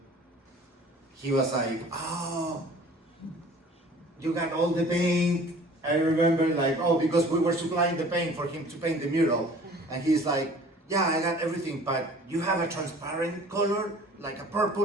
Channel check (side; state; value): both; normal; correlation 0.48